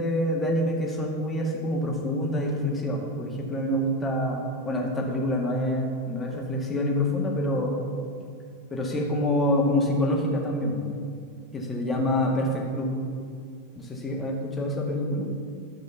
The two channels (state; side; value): normal; both; correlation 0.15